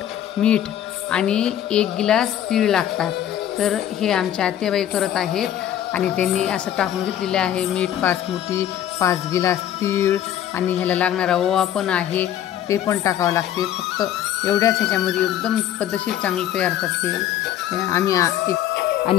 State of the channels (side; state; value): right; quieter; 11.1 dB